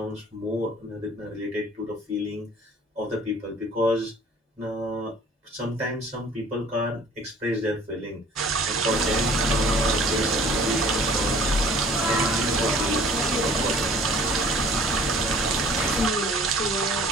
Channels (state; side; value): normal; both; correlation 0.51